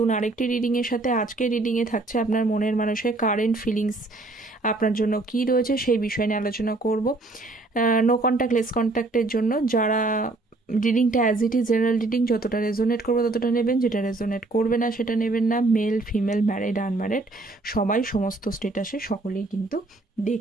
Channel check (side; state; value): left; quieter; 3.1 dB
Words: আরেকটি রিডিংয়ের সাথে। আজকে রিডিংয়ে থাকছে আপনার মনের মানুষের কারেন্ট ফিলিংস আপনার জন্য কী রয়েছে সেই বিষয় নিয়ে আলোচনা করব। নো কন্ট্যাক্ট লেস কন্ট্যাক্টের জন্য যারা রিডিংটা as it is general reading, যতটা রেজোনেট করবে ততটা নেবেন, যেটা রেজোনেট করবে না সেটা নেবেন না। মেল ফিমেল, ম্যারিড আনম্যারিড সবাই, সমস্ত স্টেটাসে সকলেই কিন্তু